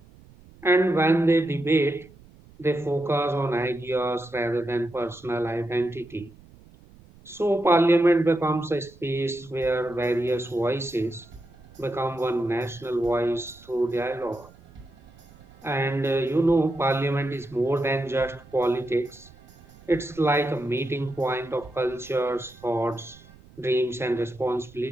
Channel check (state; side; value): noise; right; rumble, 24 dB below the sound